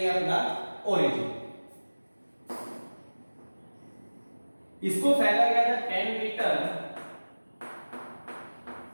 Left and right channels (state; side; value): inverted; both; correlation -1.00